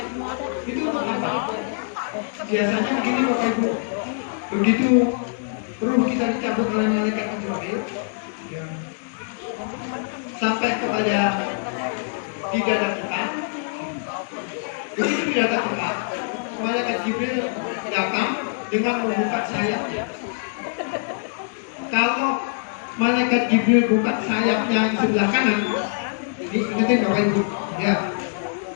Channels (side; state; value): right; silent; digital silence